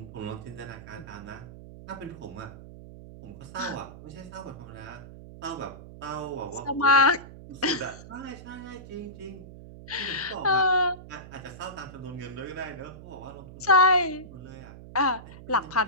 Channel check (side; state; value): right; noise; hum, 15 dB below the sound